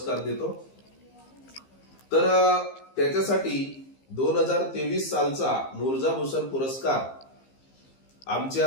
देतो. तर त्याच्यासाठी 2023 सालचा मुर्जा भूषण पुरस्कार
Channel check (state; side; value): late; right; 15 ms